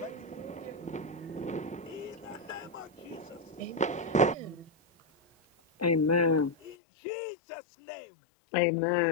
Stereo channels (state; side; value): drops out; right; at 6.8 s